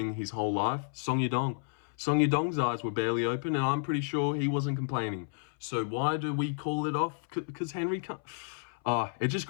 his whole life? Song Yadong. Song Yadong's eyes were barely open, and I'm pretty sure he wasn't complaining. So why do we call it off? Because Henry can't... it just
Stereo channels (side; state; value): right; silent; 57 dB below the other